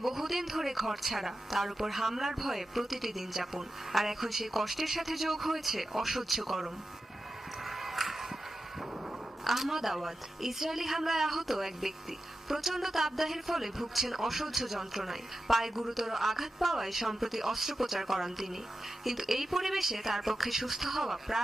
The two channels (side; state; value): both; normal; correlation 0.91